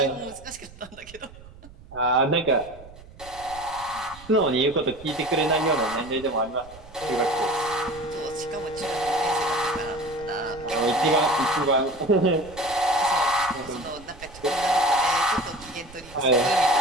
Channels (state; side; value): noise; right; rumble, 20 dB below the sound